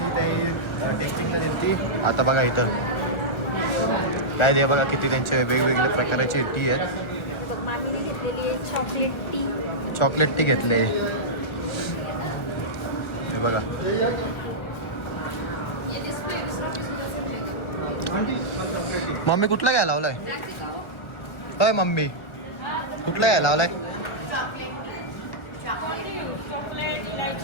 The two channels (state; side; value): late; right; 1.4 ms